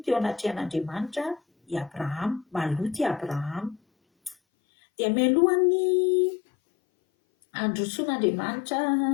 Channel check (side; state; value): right; drops out; at 4.4 s